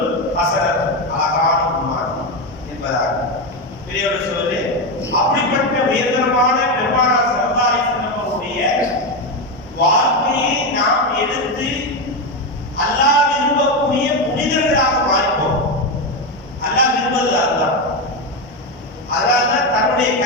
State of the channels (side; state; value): both; normal; correlation 0.11